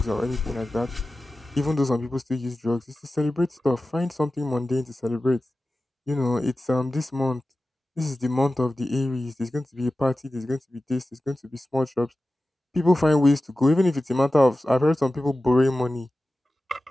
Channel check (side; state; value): both; normal; correlation 0.95